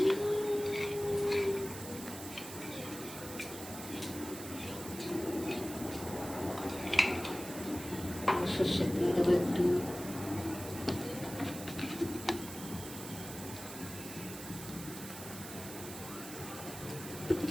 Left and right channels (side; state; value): right; noise; hiss, 11 dB below the sound